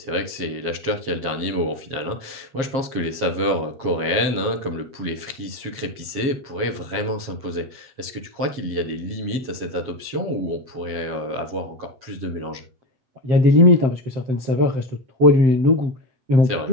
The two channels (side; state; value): left; late; 7.5 ms